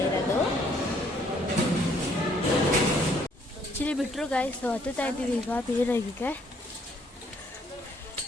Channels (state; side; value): normal; both; correlation 0.65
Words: ಇರೋದು. ಆ್ಯಕ್ಚುಲಿ ಬಿಟ್ಟರು ಗಾಯ್ಸ್ ಹತ್ತುತ್ತಾ ಇದ್ದೀವಿ ಈಗ ಬೇರೆಗೆ.